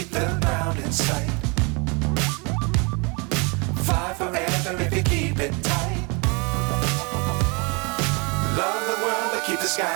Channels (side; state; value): left; quieter; 30.8 dB